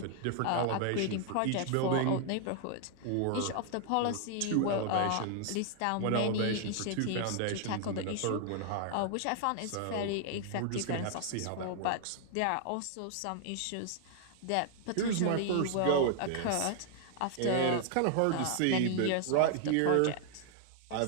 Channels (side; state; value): both; different; correlation 0.00